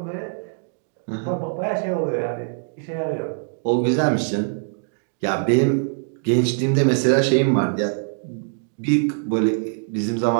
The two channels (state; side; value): silent; left; digital silence